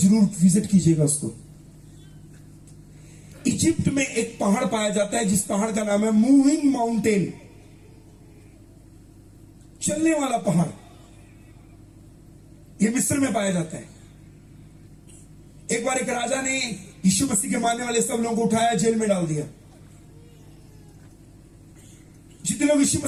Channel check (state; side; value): identical; both; correlation 1.00